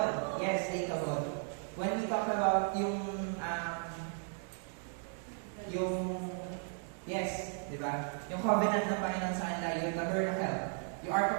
Yes, ikabod. When we talk about yes, di ba? Yung covenant ng Panginoon sa kanila, yung tabernacle, yung Ark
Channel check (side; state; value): left; silent; 54 dB below the other